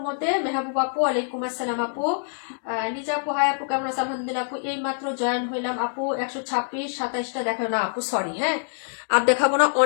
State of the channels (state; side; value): silent; right; 62 dB below the other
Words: মধ্যে। মেহবুব আপু, ওয়ালাইকুম আসসালাম আপু। নিজা আপু, হাই আপু, কেমন আছে? আলহামদুলিল্লাহ আপু, এই মাত্র জয়েন হইলাম আপু। 126, 27টা দেখো না আপু, সরি, হ্যাঁ। আর দেখাবো না,